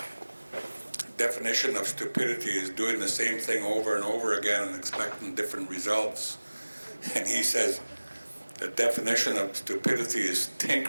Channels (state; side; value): inverted; both; correlation -1.00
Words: definition of stupidity is doing the same thing over and over again and expecting different results. And he says, the definition of stupidity is